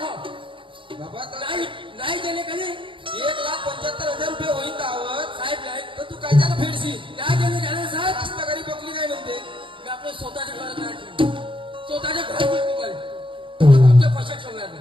हो. बाबा तर नाही नाही दिले का नाही 1,75,000 रुपये होईल दावत साहेब नाही तर तू काय त्यानं फेडशील नाही दिले झाले साहेब. रास्तागाडी बकली नाही म्हणते मी आपलं स्वतःच्या घरात नाही ठेवलं. स्वतःच्या घरात तुम्हाला तुमच्या पैशात ठेवणार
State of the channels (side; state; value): left; late; 0.25 ms